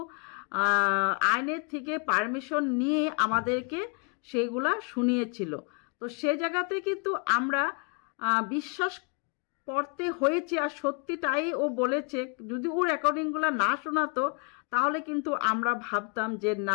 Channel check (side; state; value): right; quieter; 37.6 dB